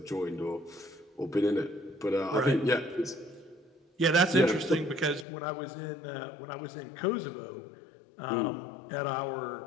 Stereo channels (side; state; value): right; drops out; at 5.2 s